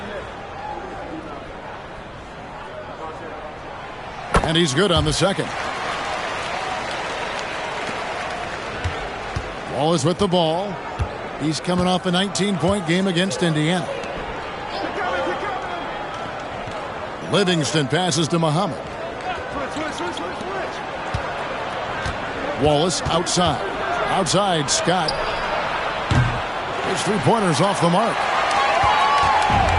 And he's good on the second. Wallace with the ball. He's coming off a 19-point game against Indiana. Livingston passes to Muhammad. Wallace outside. Outside, Scott. His 3-pointers off the mark.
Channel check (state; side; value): identical; both; correlation 1.00